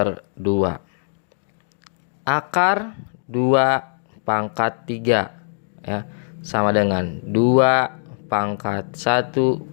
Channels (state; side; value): silent; right; digital silence